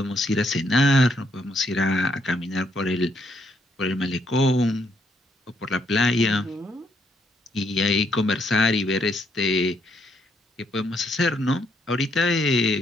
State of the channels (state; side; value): normal; both; correlation 0.73